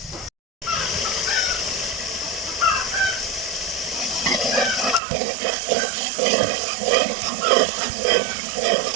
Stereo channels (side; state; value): left; drops out; at 5.0 s